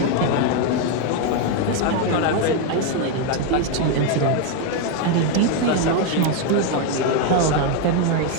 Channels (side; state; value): both; different; correlation 0.01